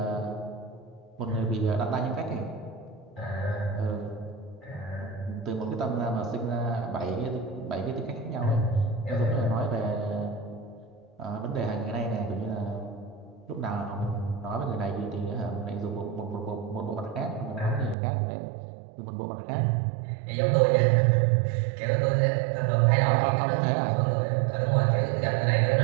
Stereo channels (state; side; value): drops out; left; at 17.9 s